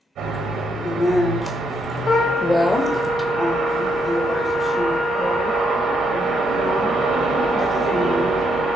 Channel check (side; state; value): both; normal; correlation 0.76